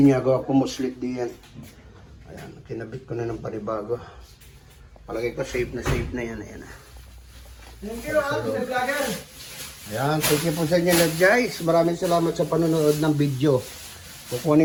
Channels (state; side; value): identical; both; correlation 1.00